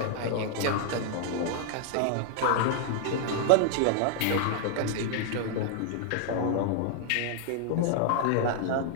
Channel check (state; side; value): different; both; correlation 0.00